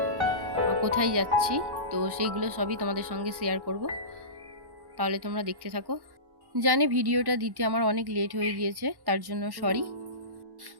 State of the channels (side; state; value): left; late; 1.1 ms